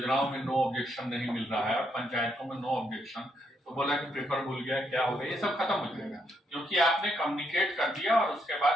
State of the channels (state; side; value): normal; both; correlation 0.76